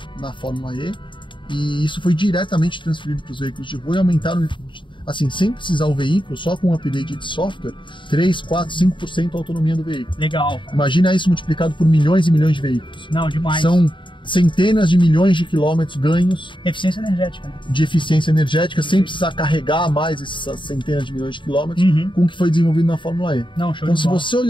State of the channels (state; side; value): late; right; 0.23 ms